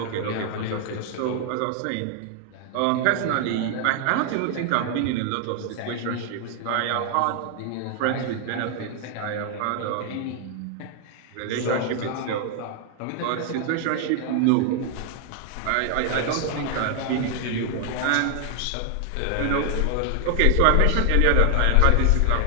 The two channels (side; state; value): both; different; correlation 0.00